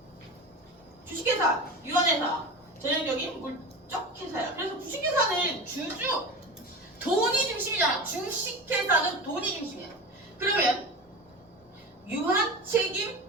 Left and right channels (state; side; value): normal; both; correlation 0.28